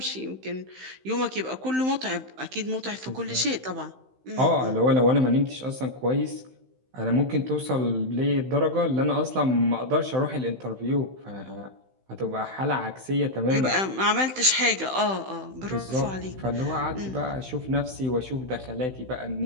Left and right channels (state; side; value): late; left; 16 ms